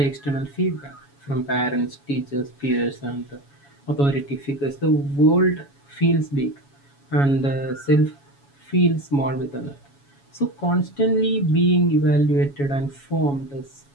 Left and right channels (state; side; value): late; right; 7.2 ms